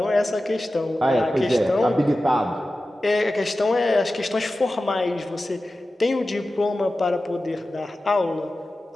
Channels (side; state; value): both; normal; correlation 0.94